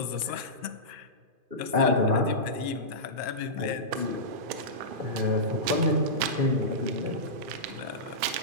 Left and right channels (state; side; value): late; left; 2.5 ms